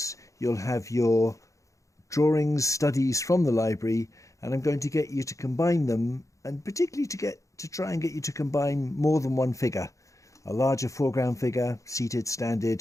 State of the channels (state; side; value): late; right; 0.15 ms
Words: you'll have your drawings, studies from the library, and I'm going to get you to combine them, and particularly to try and get you to combine more than one figure. A larger foreground figure, seated, standing,